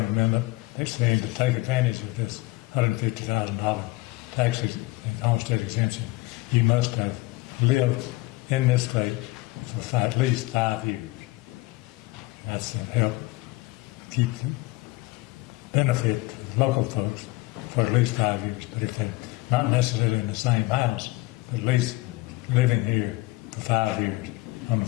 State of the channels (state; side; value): quieter; right; 21.3 dB